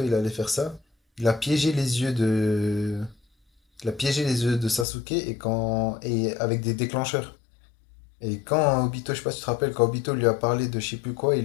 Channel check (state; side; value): drops out; right; at 4.9 s